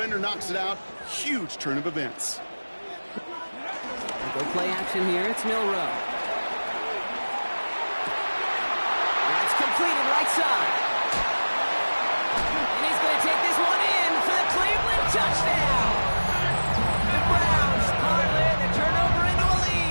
knocks it out. Huge turn of events. Go play action here, it's Milrow. That's completed right side. And he's going to take this one in for the Cleveland touchdown. The Browns parlay the turnover into a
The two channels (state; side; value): inverted; both; correlation -1.00